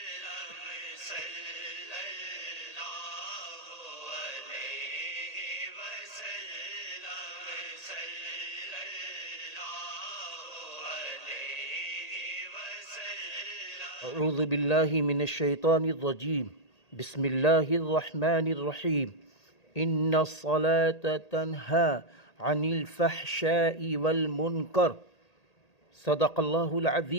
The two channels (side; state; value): right; late; 1.8 ms